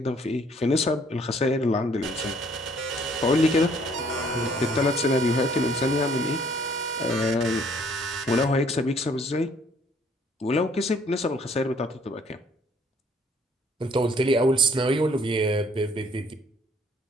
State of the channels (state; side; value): normal; both; correlation 0.61